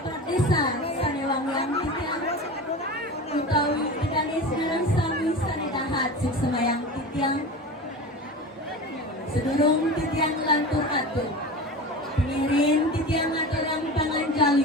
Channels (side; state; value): both; normal; correlation 0.31